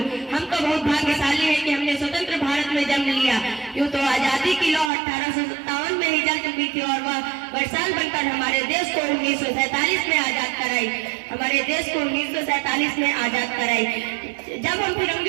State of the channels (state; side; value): drops out; left; at 4.9 s